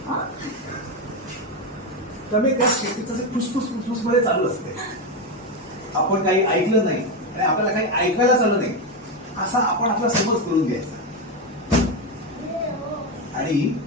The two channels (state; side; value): normal; both; correlation 0.11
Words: त्यामुळे त्या शेतीचं फुसफुस फुसफुस मध्ये चालू असते. आपण काही ऐकलं नाही आणि आपल्याला काही ऐकायला चालू नाही असा आपण आपला समज करून घ्यायचा. आणि